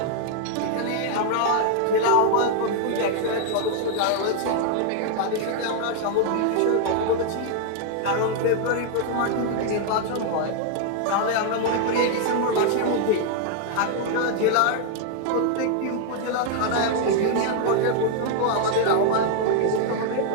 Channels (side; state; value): both; different; correlation 0.00